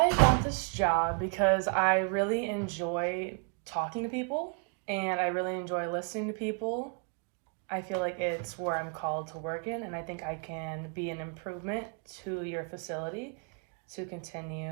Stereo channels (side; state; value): left; quieter; 39.0 dB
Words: want this job because I really enjoy talking to people and I really enjoy listening to people. I feel like it's where I'm called to work in, and I think I can be an improvement to your facility to